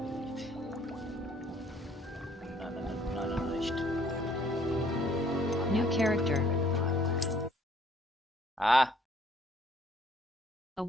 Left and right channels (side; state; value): both; normal; correlation 0.61